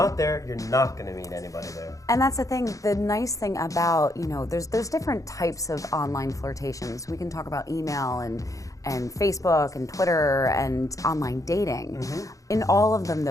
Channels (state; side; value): late; right; 0.16 ms